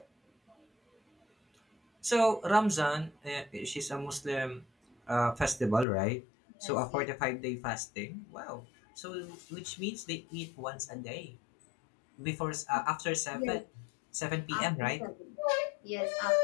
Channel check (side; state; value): right; drops out; at 5.9 s